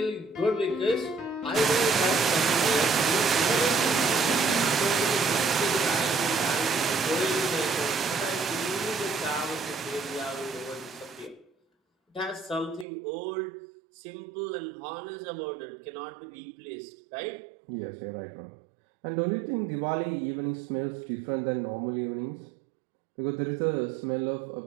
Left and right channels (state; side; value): drops out; left; at 12.9 s